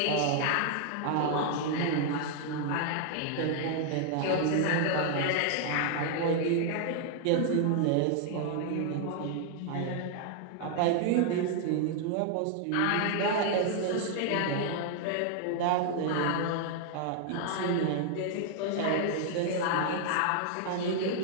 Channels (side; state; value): both; different; correlation 0.00